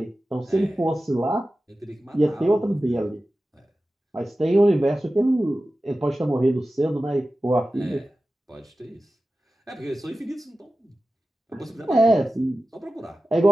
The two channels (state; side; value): normal; both; correlation 0.94